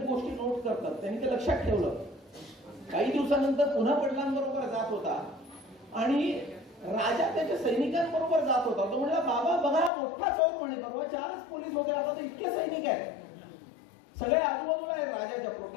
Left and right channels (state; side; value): drops out; right; at 9.9 s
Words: गोष्टी नोट करतात, त्यांनी ते लक्षात ठेवलं. काही दिवसानंतर पुन्हा वडिलांबरोबर जात होता आणि राजा त्याच्या सैनिकांबरोबर जात होता. तो म्हणला बाबा बघा मोठा चोर म्हणे, परवा 4च पोलीस होते, आता तर इतके सैनिक आहेत, सगळे आजूबाजूला आहेत राजाच्या